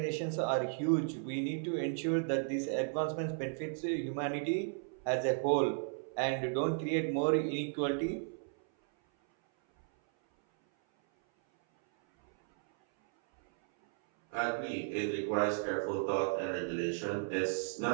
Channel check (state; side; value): silent; left; 55 dB below the other